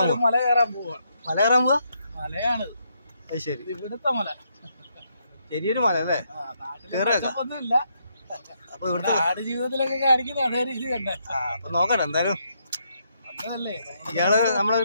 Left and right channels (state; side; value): inverted; both; correlation -0.77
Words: പോവാ. മല കയറാൻ പോവാ. മല കയറാൻ പോവാ. മലയാണ് അത് ശരി. ഇവിടുത്തെ മല ചെറിയൊരു മല അല്ലേ? ഒന്നുമില്ല. അപ്പൊ ഇവിടുത്തെ നാട് ജീവിതത്തിലൊക്കെ കാണിക്കുന്ന അതേ രീതി തന്നെ. അപ്പൊ നോക്കട്ടെ എന്തായാലും. അതല്ലേ ഇയാള് നമ്മളെ